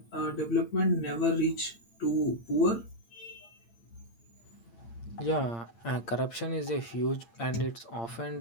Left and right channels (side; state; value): right; late; 8.7 ms